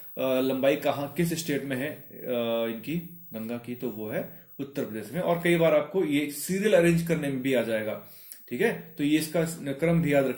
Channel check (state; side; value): identical; both; correlation 1.00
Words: लंबाई कहां, किस स्टेट में है इनकी गंगा की? तो वो है उत्तर प्रदेश में। और कई बार आपको ये सीरियल अरेंज करने में भी आ जाएगा, ठीक है, तो ये इसका क्रम भी याद